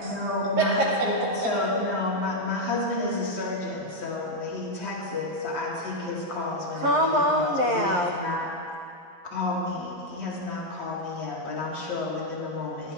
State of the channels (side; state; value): left; late; 11 ms